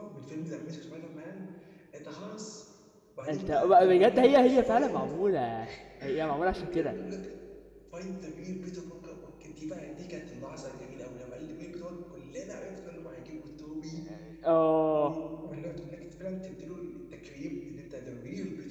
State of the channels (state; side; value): identical; both; correlation 1.00